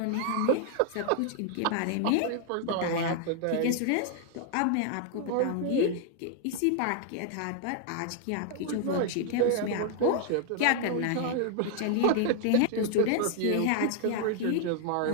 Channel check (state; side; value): different; both; correlation 0.00